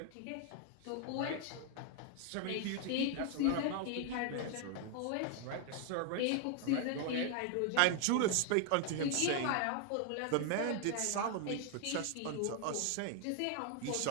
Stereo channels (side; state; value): both; different; correlation 0.00